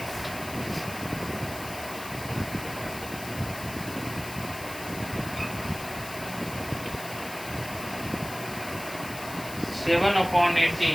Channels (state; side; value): noise; left; hiss, 12 dB below the sound